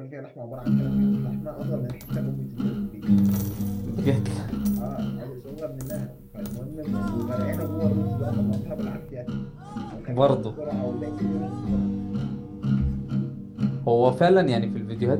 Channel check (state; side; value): identical; both; correlation 1.00